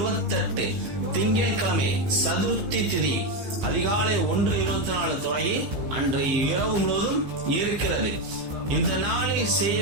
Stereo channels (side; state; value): left; late; 15 ms